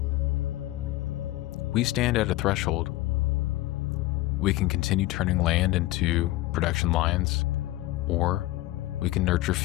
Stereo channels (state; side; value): quieter; right; 17.5 dB